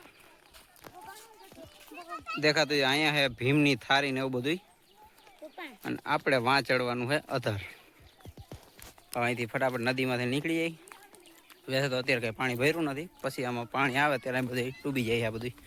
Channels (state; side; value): identical; both; correlation 1.00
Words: દેખાતું છે અહીંયા છે ભીમની થારી ને એવું બધું. અને આપણે વાં ચડવાનું છે અધર. અહીંથી ફટાફટ નદીમાંથી નીકળી જાય. વੈસે તો અત્યારે કંઈ પાણી ભર્યું નથી, પછી આમાં પાણી આવે ત્યારે બધું ડૂબી જાય. આ બધું